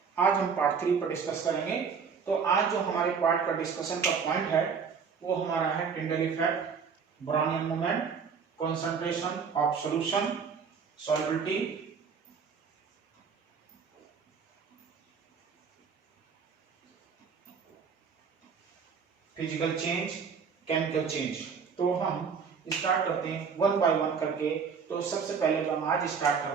आज हम पार्ट 3 पर डिस्कस करेंगे। तो आज जो हमारे पार्ट का डिस्कशन का पॉइंट है वो हमारा है Tyndall effect, Brownian movement, concentration of solution, solubility, physical change, chemical change. तो हम स्टार्ट करते हैं वन बाय वन करके। तो सबसे पहले जो हम आज स्टार्ट कर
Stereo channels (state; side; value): quieter; left; 6.1 dB